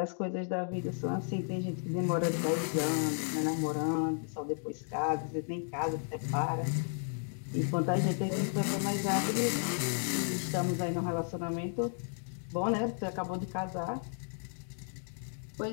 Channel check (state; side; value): silent; right; 55 dB below the other